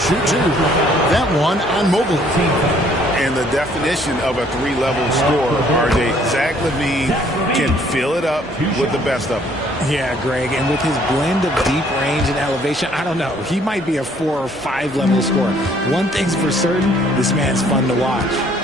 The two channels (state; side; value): normal; both; correlation 0.62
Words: 2. That one on Mobley. And the definition of a 3-level scorer, RJ, Zach LaVine can fill it up with the best of them. Yeah, Greg, and with his blend of deep range and elevation, I don't know. He might be a 4 or 5 level scorer. One thing's for certain, this man's fun to watch.